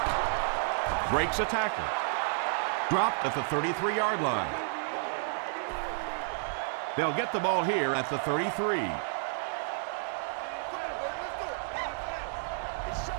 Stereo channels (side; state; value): left; silent; 57 dB below the other